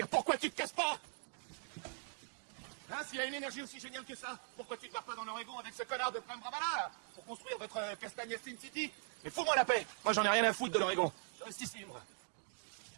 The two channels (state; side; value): silent; left; 51 dB below the other